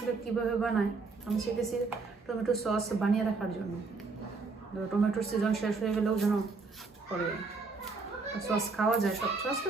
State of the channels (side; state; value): left; quieter; 4.2 dB